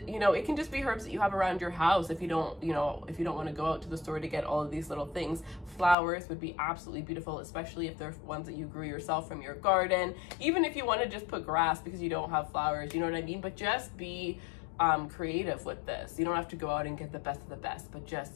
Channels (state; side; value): drops out; right; at 6.0 s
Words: you know, it can just be herbs that you have around your house if you don't, you know, if you don't want to go out to the store to get all of these little things. Flowers would be absolutely beautiful, especially if they're ones that you grew yourself from your garden. Even if you want to just put grass because you don't have flowers, you know what I mean? But just be creative with this. You don't have to go out and get the best of the best, but